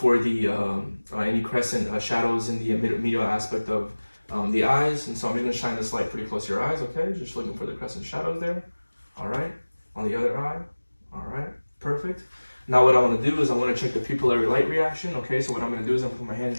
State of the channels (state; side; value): inverted; both; correlation -1.00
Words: for the any crescent shadows in the medial aspect of the eyes. And so I'm just going to shine this light pretty close to your eyes, okay? Just looking for the crescent shadows there. All right, on the other eye. All right, perfect. Now what I want to do is I want to check the pupillary light reaction, okay? So what I'm going to do is I'm going to put my hand in